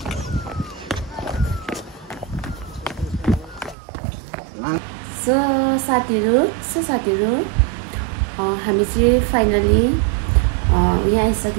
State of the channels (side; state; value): left; drops out; at 3.8 s